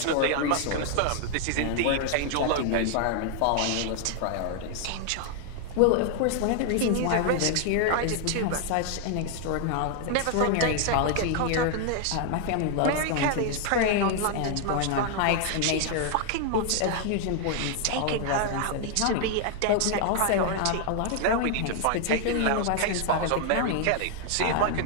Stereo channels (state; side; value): different; both; correlation 0.00